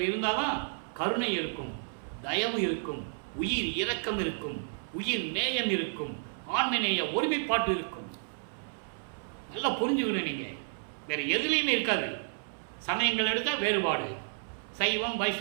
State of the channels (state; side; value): silent; left; 57 dB below the other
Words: இருந்தால் தான் கருணை இருக்கும், தயவு இருக்கும், உயிர் இரக்கம் இருக்கும், உயிர் நேயம் இருக்கும், ஆன்மநேய ஒருமைப்பாட்டு இருக்கும். நல்லா புரிஞ்சுக்கணும். நீங்கள் வேறு எதுலேயுமே இருக்காது. சமயங்கள் எடுத்தால் வேறுபாடு, சைவம்